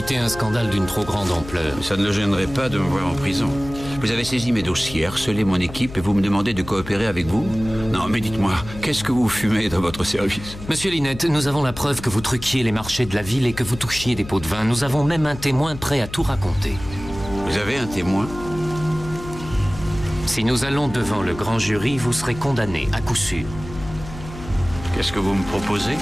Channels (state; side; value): noise; left; hum, 13 dB below the sound